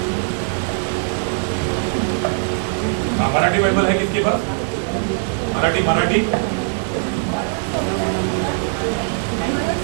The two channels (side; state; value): left; silent; digital silence